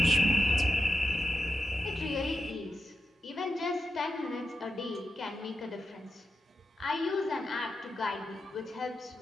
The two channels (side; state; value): both; normal; correlation 0.89